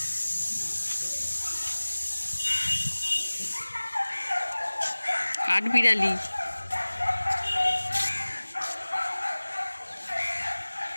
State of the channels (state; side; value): inverted; both; correlation -1.00